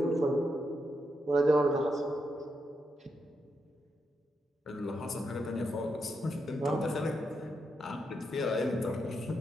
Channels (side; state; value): both; normal; correlation 0.83